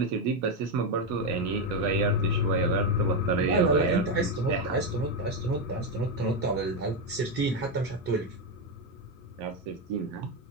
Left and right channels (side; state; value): both; normal; correlation 0.07